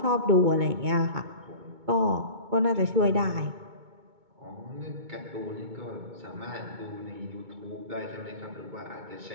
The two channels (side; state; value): left; late; 2.2 ms